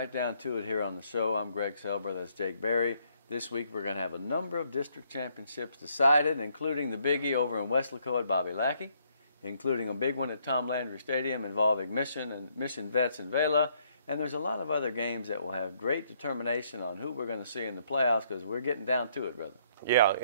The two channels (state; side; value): inverted; both; correlation -0.69